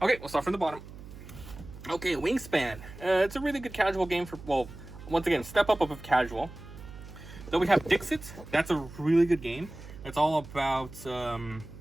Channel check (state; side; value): noise; right; hum, 15 dB below the sound